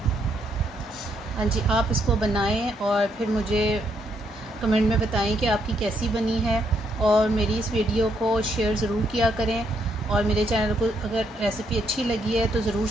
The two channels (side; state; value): both; normal; correlation 0.74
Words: हाँ जी, आप इसको बनाएं और फिर मुझे कमेंट में बताएं कि आपकी कैसी बनी है। और मेरी इस वीडियो को शेयर ज़रूर किया करें और मेरे चैनल को अगर रेसिपी अच्छी लगी है तो ज़रूर